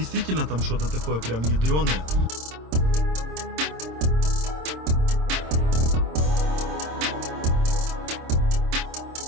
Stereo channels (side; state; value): left; late; 26 ms